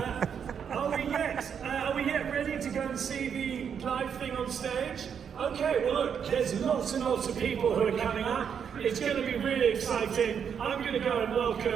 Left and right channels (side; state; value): left; quieter; 7.5 dB